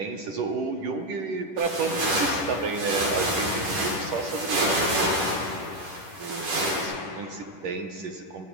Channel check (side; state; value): left; late; 11 ms